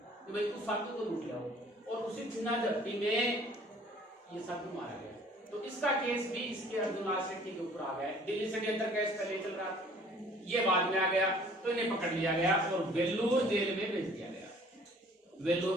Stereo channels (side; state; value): both; normal; correlation 0.54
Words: कि भाई उस साधु को लूट लाओ, और उसी चुना झपटी में ये साधु मारा गया। तो इसका केस भी इसके अर्जुन लाल सेठी के ऊपर आ गया। दिल्ली षड्यंत्र केस पहले चल रहा था, ये बाद में आ गया, तो इन्हें पकड़ लिया गया और वेल्लोर जेल में भेज दिया गया।